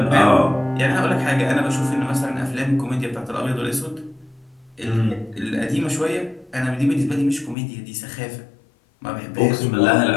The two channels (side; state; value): right; drops out; at 7.6 s